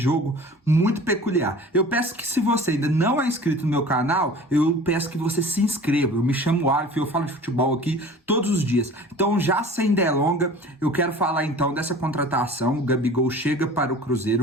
muito peculiar. Eu peço que, se você ainda não é inscrito no meu canal, eu peço que você se inscreva. Eu me chamo Alif, eu falo de futebol aqui todos os dias. Então, já sem delonga, eu quero falar então dessa contratação. O Gabigol chega para o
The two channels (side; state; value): both; normal; correlation 0.43